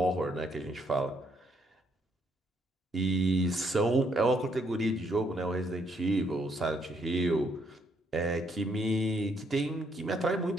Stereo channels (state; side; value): normal; both; correlation 0.72